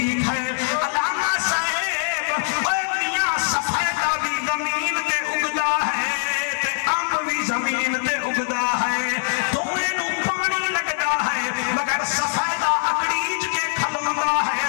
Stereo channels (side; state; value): right; silent; 64 dB below the other